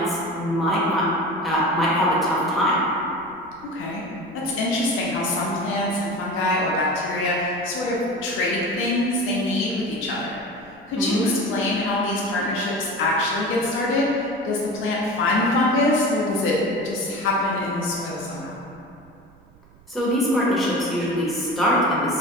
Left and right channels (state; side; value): noise; right; rumble, 26 dB below the sound